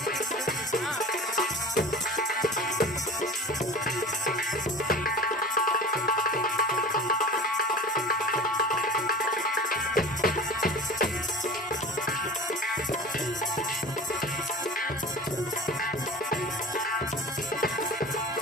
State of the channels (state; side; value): normal; both; correlation 0.37